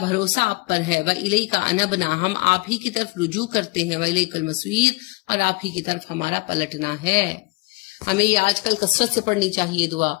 آپ پر ہے. وإلیک انبنا، ہم آپ ہی کی طرف رجوع کرتے ہیں. وإلیک المصیر، اور آپ ہی کی طرف ہمارا پلٹنا ہے. ہمیں یہ آج کل کثرت سے پڑھنی چاہیے دعا.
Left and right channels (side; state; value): right; quieter; 26.2 dB